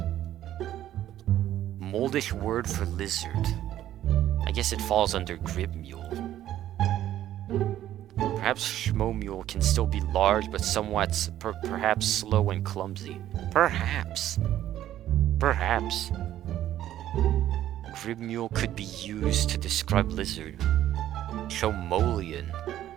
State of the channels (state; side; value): quieter; left; 12.5 dB